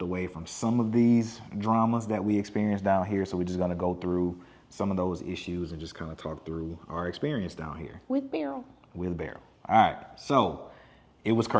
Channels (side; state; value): both; identical; correlation 1.00